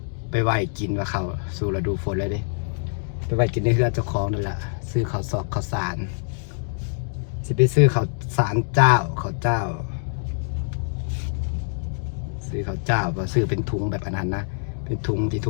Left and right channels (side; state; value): right; silent; digital silence